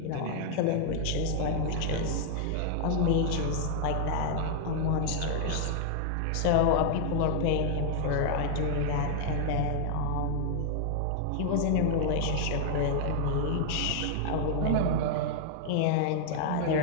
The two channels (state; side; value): different; both; correlation 0.00